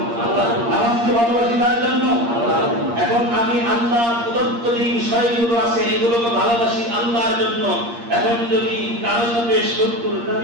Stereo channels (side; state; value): left; late; 8.6 ms